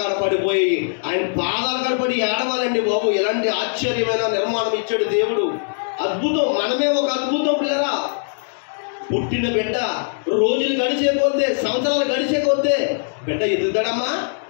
పడిపోయి ఆయన పాదాల కాడ పడి ఏడవాలండి బాబు. ఎలాంటి ఆశ్చర్యమైన నిర్మాణం ఇచ్చాడు దేవుడు! అద్భుతం. మనమే ఒక అద్భుతం పిల్లరా. పుట్టిన బిడ్డ రోజులు గడిచే కొద్దే, సంవత్సరాలు గడిచే కొద్దే బిడ్డ ఎదుగుతాడమ్మా,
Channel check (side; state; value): right; silent; digital silence